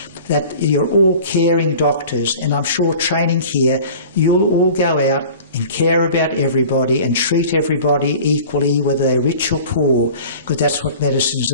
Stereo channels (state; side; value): inverted; both; correlation -0.42